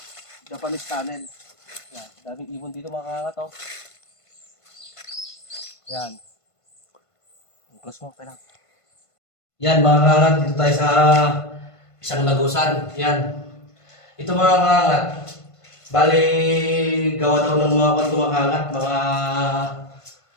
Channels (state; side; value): late; right; 1.5 ms